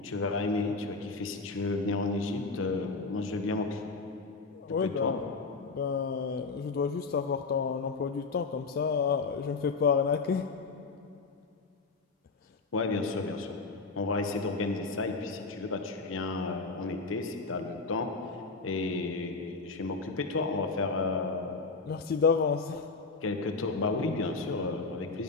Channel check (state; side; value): quieter; right; 4.1 dB